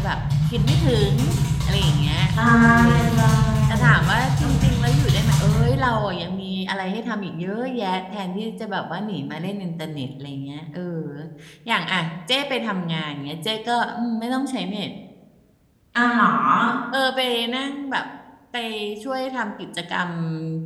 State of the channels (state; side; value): identical; both; correlation 1.00